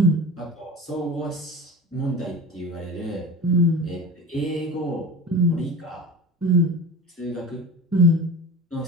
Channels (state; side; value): normal; both; correlation 0.31